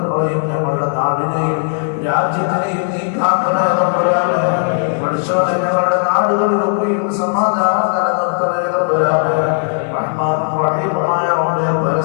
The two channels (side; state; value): right; silent; digital silence